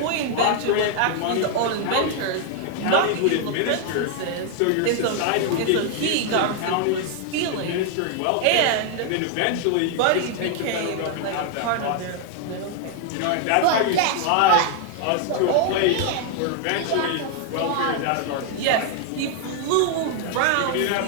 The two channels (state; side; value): different; both; correlation 0.00